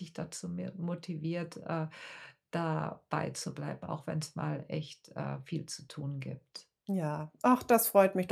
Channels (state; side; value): identical; both; correlation 1.00